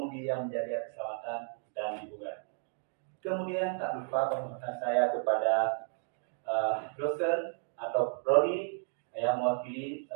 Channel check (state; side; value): silent; left; 55 dB below the other